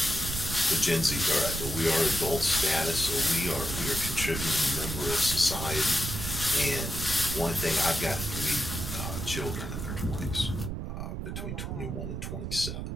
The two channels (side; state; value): right; noise; rumble, 5 dB below the sound